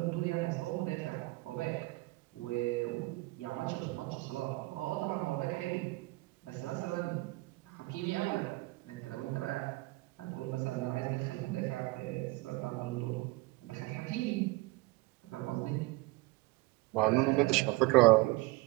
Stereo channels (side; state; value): left; quieter; 22.7 dB